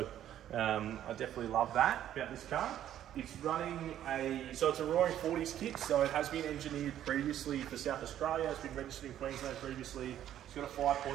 I definitely love that about this car. It's running so it's a Roaring 40s kit, so it has been engineered previously for South Australia. It's been registered in Queensland previously. It's got a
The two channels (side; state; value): left; quieter; 11.3 dB